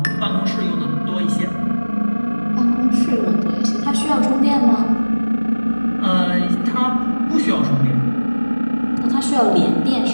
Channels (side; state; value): both; inverted; correlation -1.00